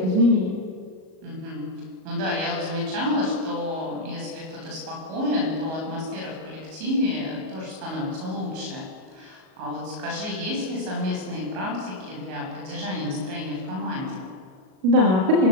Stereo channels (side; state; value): left; late; 38 ms